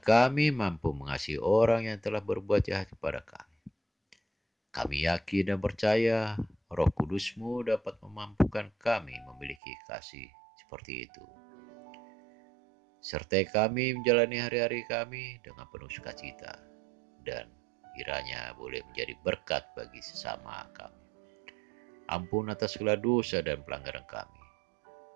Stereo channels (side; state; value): left; drops out; at 9.6 s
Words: mampu mengasihi orang yang telah berbuat jahat kepada kami. Kami yakin dan percaya Roh Kudus-Mu dapat memampukan kami memiliki kasih seperti itu. Sertai kami menjalani hari-hari kami dengan penuh sukacita, dan kiranya boleh menjadi berkat bagi sesama kami. Ampun atas segala dosa dan pelanggaran kami.